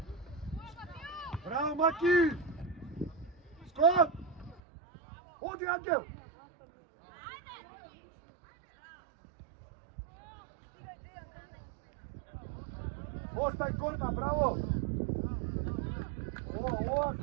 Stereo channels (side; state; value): left; drops out; at 4.6 s